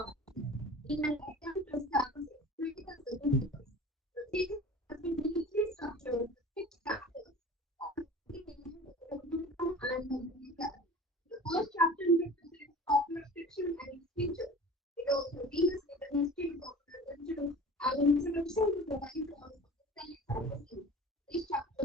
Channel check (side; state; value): both; normal; correlation 0.40